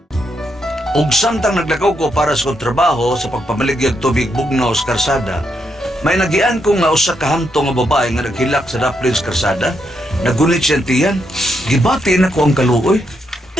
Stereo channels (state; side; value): normal; both; correlation 0.79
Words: Ug samtang naglakaw ko para sa kong trabaho sa pagpamaligyag tubig bugnaw sa karsada, may nagian ko nga usa ka hamto nga babae nga naghilak sa daplin sa karsada. Nagunit siyang tiyan. Gibati na ko ang kaluoy.